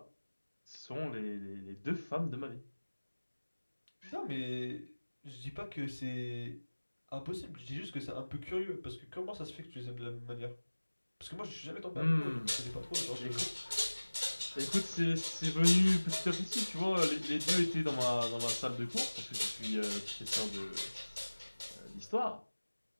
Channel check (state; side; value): inverted; both; correlation -1.00